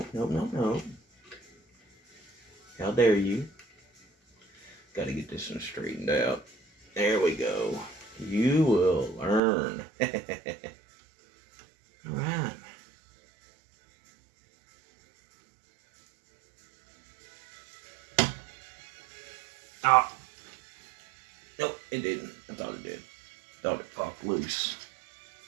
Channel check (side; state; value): left; drops out; at 9.4 s